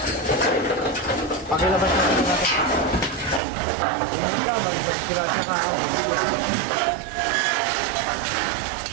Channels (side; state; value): left; drops out; at 3.4 s